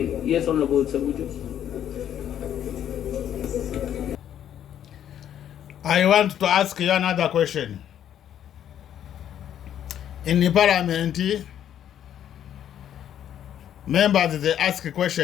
Yes, Honorable Sabuju. I want to ask you another question. In the parliament, members, they ask a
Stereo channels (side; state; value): right; quieter; 10.3 dB